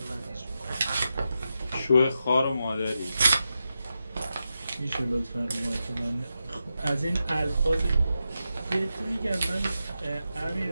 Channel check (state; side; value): inverted; both; correlation -0.89